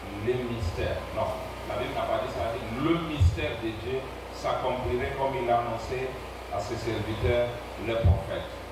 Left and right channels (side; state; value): both; identical; correlation 1.00